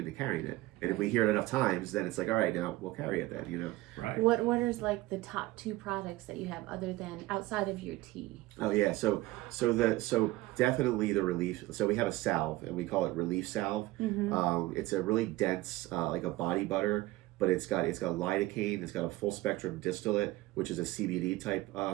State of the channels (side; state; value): left; quieter; 18.4 dB